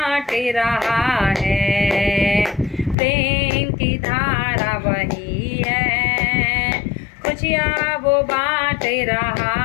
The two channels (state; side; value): drops out; right; at 3.0 s